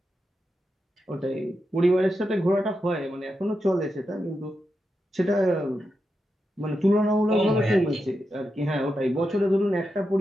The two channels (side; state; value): both; normal; correlation 0.87